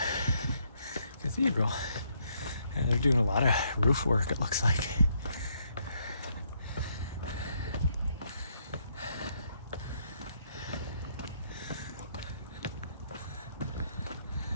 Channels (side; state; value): both; inverted; correlation -0.73